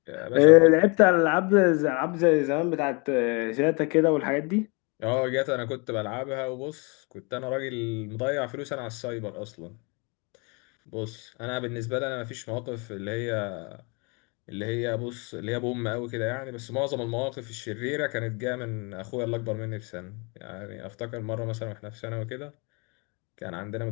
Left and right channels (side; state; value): right; quieter; 31.5 dB